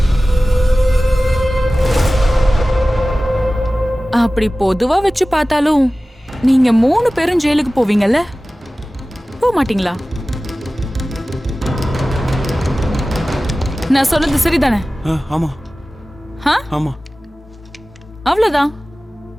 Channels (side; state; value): both; normal; correlation 0.97